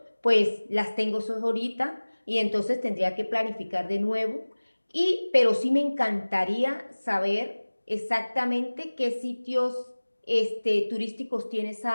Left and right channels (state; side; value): inverted; both; correlation -1.00